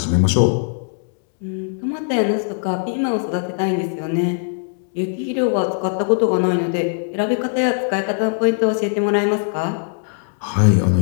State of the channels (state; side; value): silent; right; digital silence